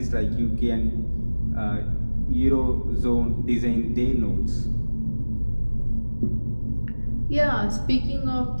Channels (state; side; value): inverted; both; correlation -1.00